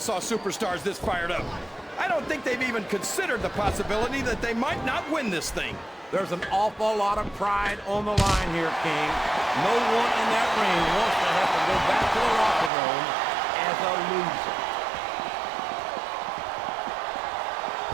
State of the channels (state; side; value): drops out; left; at 12.7 s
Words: superstars this fired up. I don't think they've even considered the possibility that they might not win this thing. There's an awful lot of pride on the line here, King. No one in that ring wants to have to go back to the locker room as a loser.